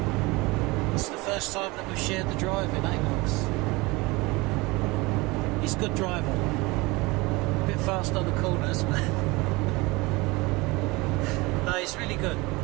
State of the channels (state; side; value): quieter; left; 23.5 dB